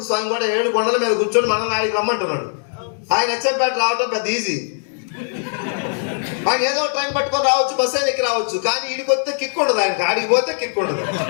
స్వామి కూడా 7 కొండల మీద కూర్చొని మనల్ని ఆయనకి రమ్మంటున్నాడు. ఆయన అచ్చంపేట రావటం పెద్ద ఈజీ. ఆయన ఏదో ట్రైన్ పట్టుకొని రావచ్చు, బస్సు ఎక్కి రావచ్చు, కానీ ఈడికి వస్తే కిక్ ఉండదు, ఆయనకి ఆడికి పోతే కిక్ ఉండదు.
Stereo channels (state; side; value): silent; right; digital silence